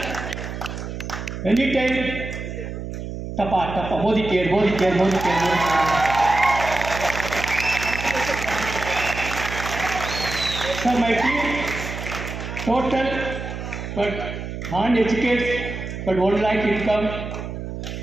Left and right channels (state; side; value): noise; right; hum, 7 dB below the sound